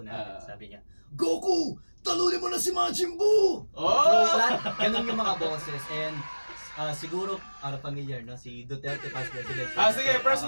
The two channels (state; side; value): inverted; both; correlation -1.00